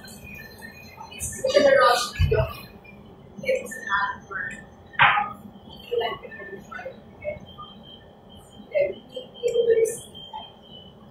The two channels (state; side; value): identical; both; correlation 1.00